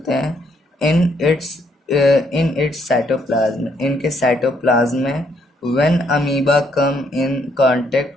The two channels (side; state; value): both; normal; correlation 0.72